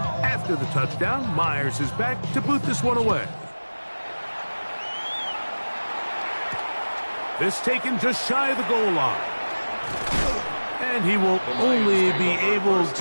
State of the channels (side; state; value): both; inverted; correlation -1.00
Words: After the touchdown, Myers is back to boot this one away. This taken just shy of the goal line. And he will only be able